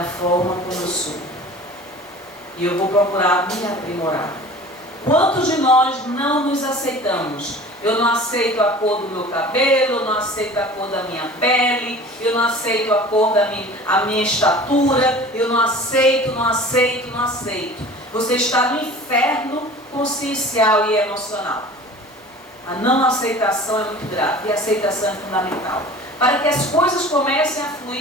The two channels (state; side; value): normal; both; correlation 0.42